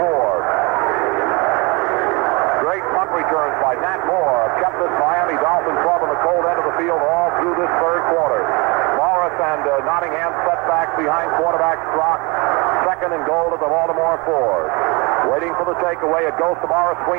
Great punt returns by Nat Moore have kept this Miami Dolphin club on the cold end of the field all through this third quarter. Morris and Nottingham setback behind quarterback Strock. Second and goal to the Baltimore 4. Waiting for the takeaway. It goes to Morris,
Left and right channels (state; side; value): quieter; left; 27.8 dB